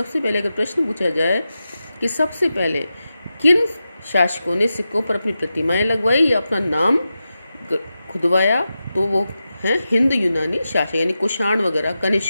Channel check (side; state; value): both; inverted; correlation -0.91